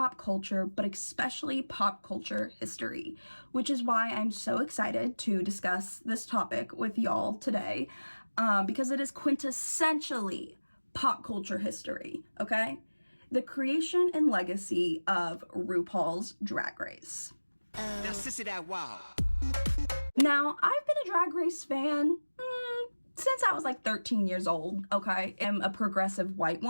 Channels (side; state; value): both; inverted; correlation -1.00